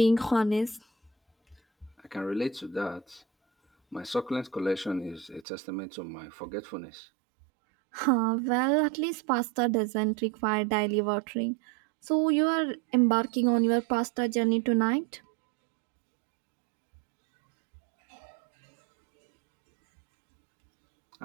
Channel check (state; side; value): drops out; left; at 5.5 s